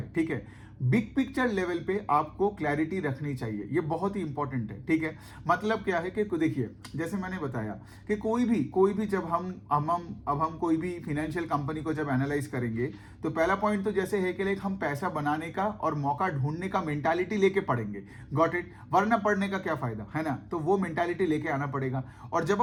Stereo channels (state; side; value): identical; both; correlation 1.00